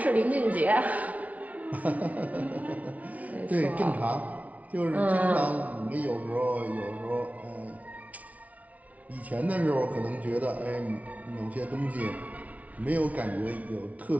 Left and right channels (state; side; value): late; left; 0.070 ms